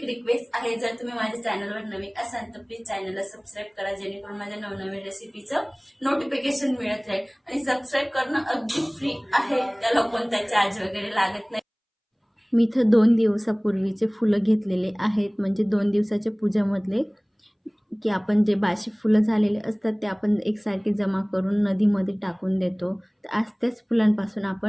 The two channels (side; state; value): both; identical; correlation 1.00